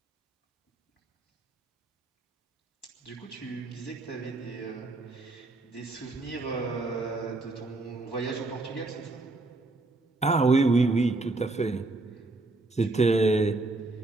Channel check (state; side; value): quieter; left; 3.1 dB